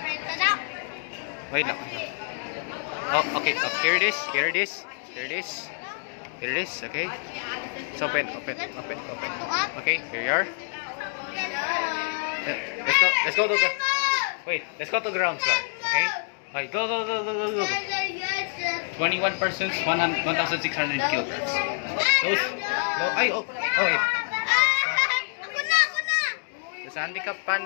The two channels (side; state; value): right; silent; digital silence